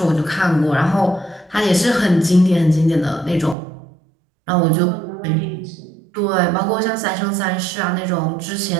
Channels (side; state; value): left; drops out; at 3.6 s